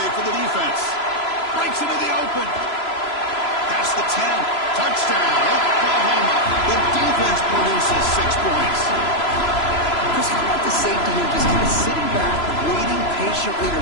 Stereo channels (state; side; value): late; right; 3.0 ms